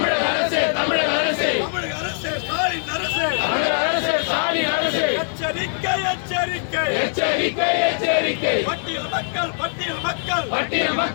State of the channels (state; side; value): silent; right; digital silence